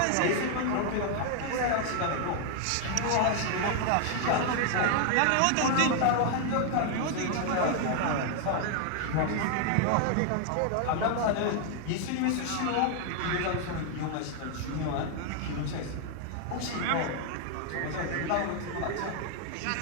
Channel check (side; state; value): both; different; correlation 0.00